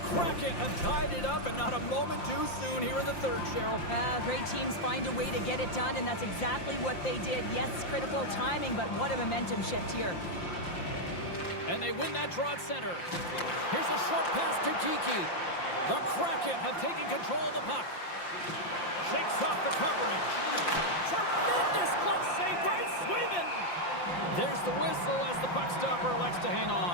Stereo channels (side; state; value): right; late; 5.7 ms